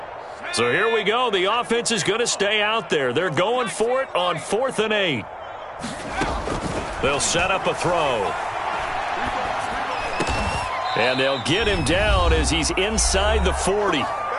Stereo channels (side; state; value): both; identical; correlation 1.00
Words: So here we go. The offense is going to stay out there. They're going for it on 4th and 8. They'll set up a throw. And they'll get him down as he's inside the 40.